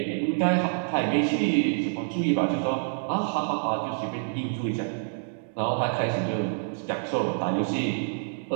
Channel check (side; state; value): left; silent; digital silence